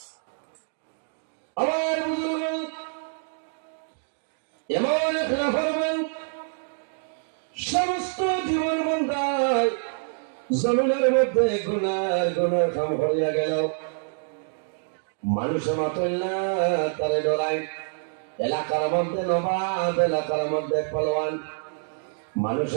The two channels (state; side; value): silent; left; digital silence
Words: আমার বুজুর্গ এমন এক নাফরমান সমস্ত জীবন বান্দায় জমিনের মধ্যে গুনার গুনার কাম হইয়া গেল। মানুষে মাতল না, তারে ডরাই। এলাকার মধ্যে নবাব, এলাকার মধ্যে পালোয়ান,